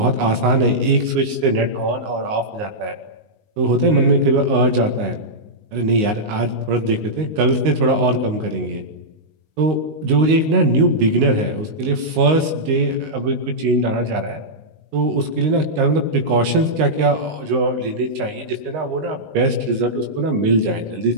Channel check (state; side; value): late; left; 19 ms